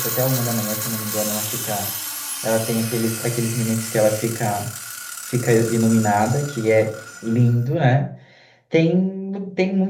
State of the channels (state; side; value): identical; both; correlation 1.00